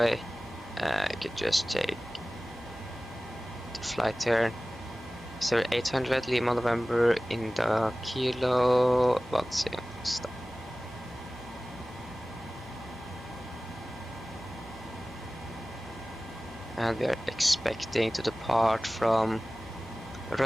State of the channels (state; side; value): normal; both; correlation 0.97